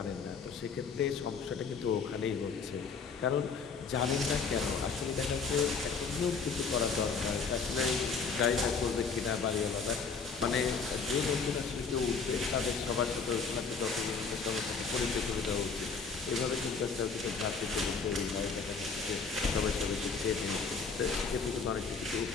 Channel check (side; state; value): right; quieter; 5.1 dB